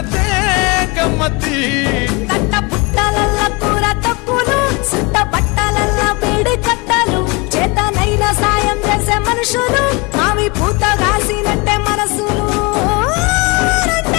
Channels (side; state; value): right; quieter; 27.8 dB